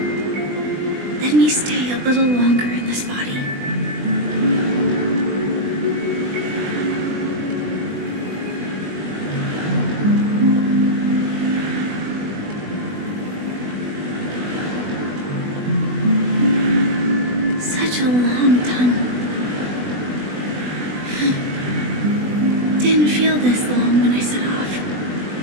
Let me stay a little longer in this body. Such a long tunnel. Didn't feel this long when I set off.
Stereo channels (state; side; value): late; left; 20 ms